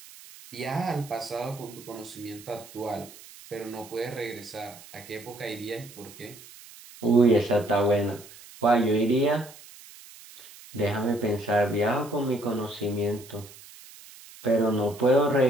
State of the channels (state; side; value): noise; right; hiss, 19 dB below the sound